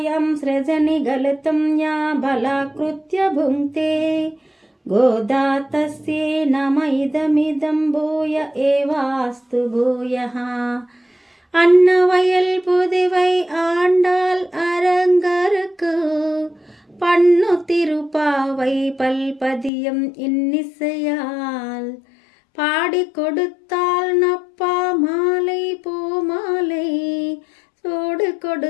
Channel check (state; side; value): drops out; right; at 19.7 s